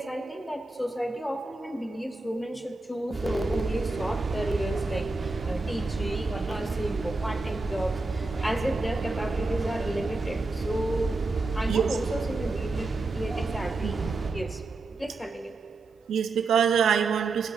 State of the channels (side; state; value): left; quieter; 3.5 dB